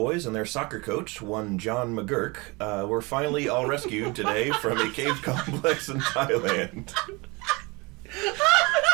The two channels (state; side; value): quieter; left; 26.4 dB